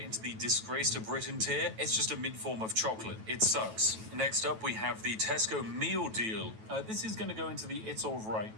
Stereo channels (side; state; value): left; late; 9.2 ms